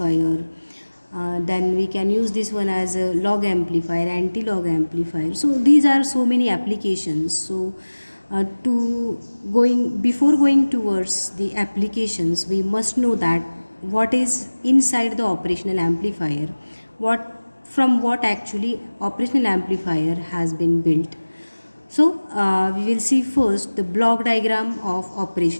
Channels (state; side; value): inverted; both; correlation -1.00